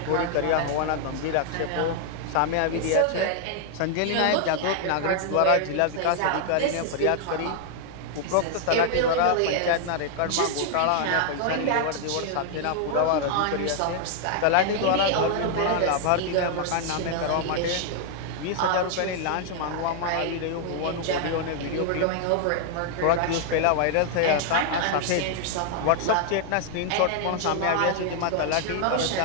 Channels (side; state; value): both; different; correlation 0.00